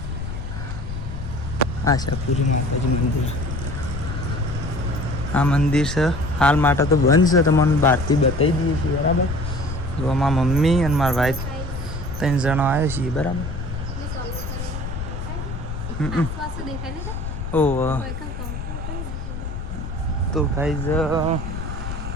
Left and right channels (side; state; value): left; noise; rumble, 6 dB below the sound